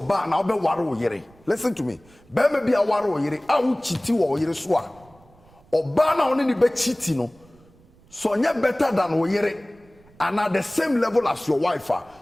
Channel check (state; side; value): noise; right; rumble, 28 dB below the sound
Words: listen to me. So you're better than oyere, and at the same level as your wife,